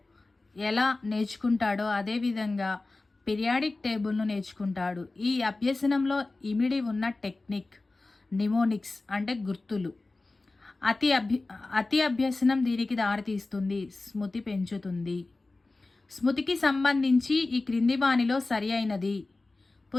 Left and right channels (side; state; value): right; quieter; 3.3 dB